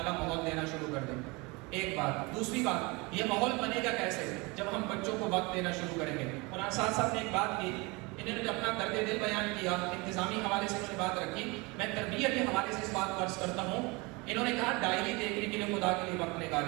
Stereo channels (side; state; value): left; quieter; 26.3 dB